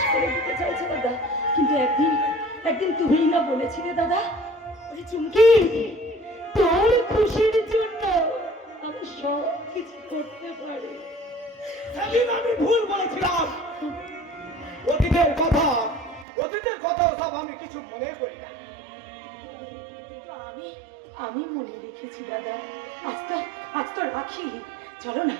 করে দিতে চাইছো দাদা, কিন্তু একদিন একদিন তুমিই না বলেছিলে দাদা, ওই চুমকি তোর খুশির জন্য আমি সব কিছু করতে পারি। সেদিন আমি ভুল বলেছিলাম। অতীতের কথা সব আমি কিছু মনে করি না। কিন্তু আমি মনে রেখেছি দাদা। আজ তো রাখি।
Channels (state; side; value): drops out; left; at 16.2 s